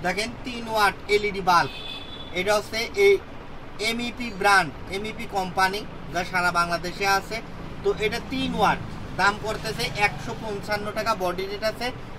দেখেন 3 ওয়াট এলইডি বাল্ব। এটা হচ্ছে এই এমইপি ব্র্যান্ড, এমইপি কোম্পানি, যা সারা বাংলাদেশে আছে। তো এটা 3 ওয়াট, দাম করতেছে 155 টাকা। বডি রেট আছে,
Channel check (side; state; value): both; identical; correlation 1.00